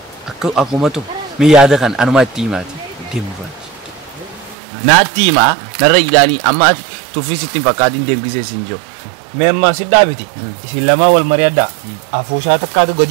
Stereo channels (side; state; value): left; drops out; at 4.5 s